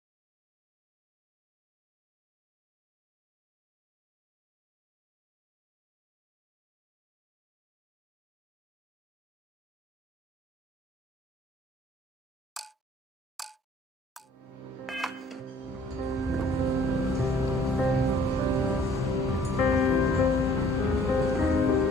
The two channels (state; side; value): normal; both; correlation 0.55